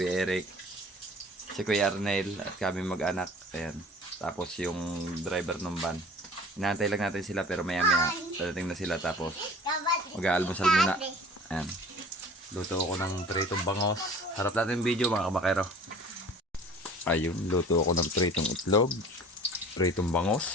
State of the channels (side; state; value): both; normal; correlation 0.46